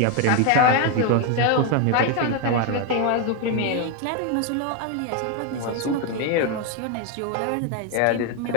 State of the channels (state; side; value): different; both; correlation 0.01